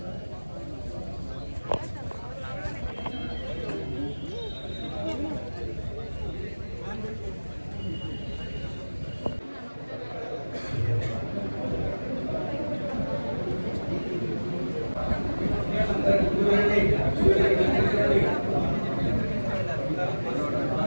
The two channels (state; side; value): inverted; both; correlation -1.00